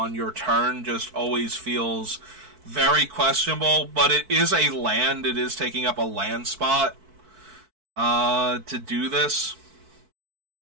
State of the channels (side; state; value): left; late; 4.5 ms